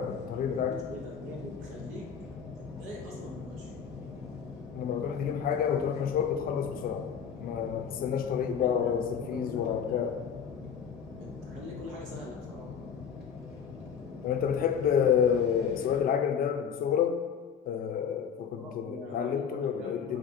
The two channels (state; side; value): quieter; right; 7.3 dB